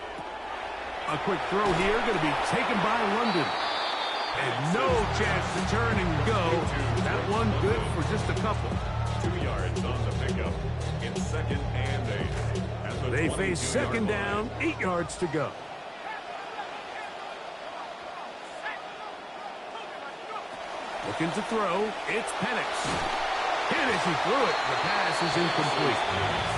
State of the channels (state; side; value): identical; both; correlation 1.00